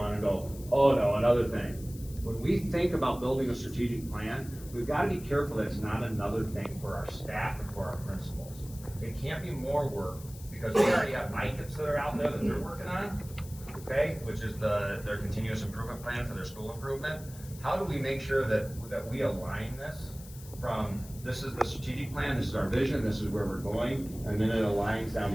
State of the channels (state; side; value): noise; left; hiss, 18 dB below the sound